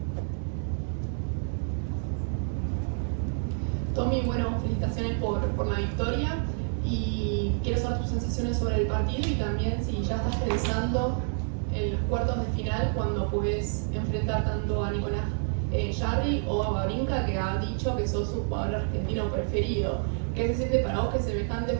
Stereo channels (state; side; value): silent; left; 59 dB below the other